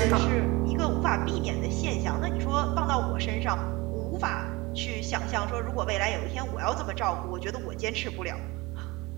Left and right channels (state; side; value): quieter; left; 23.3 dB